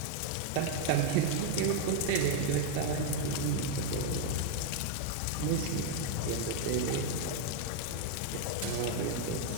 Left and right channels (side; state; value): both; different; correlation 0.01